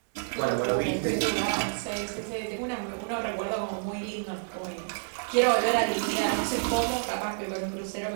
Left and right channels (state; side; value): silent; left; digital silence